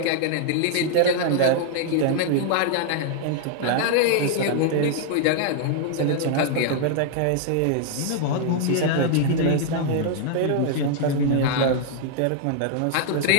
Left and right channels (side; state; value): both; different; correlation 0.00